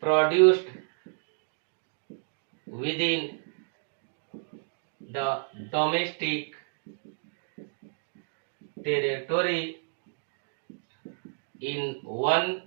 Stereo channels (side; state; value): left; silent; digital silence